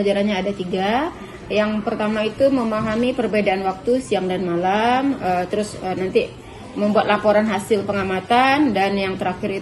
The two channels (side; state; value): both; identical; correlation 1.00